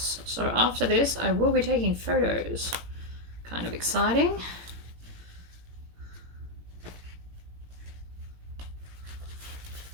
So after this, I will be taking photos. Kind of exciting.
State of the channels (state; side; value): late; left; 17 ms